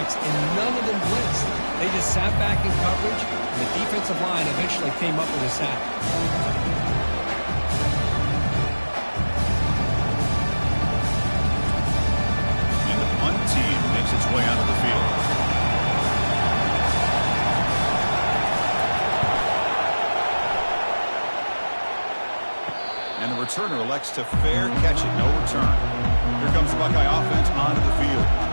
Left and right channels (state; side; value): inverted; both; correlation -1.00